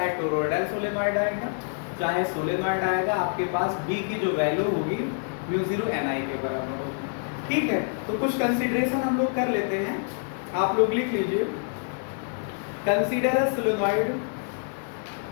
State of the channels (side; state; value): right; silent; 58 dB below the other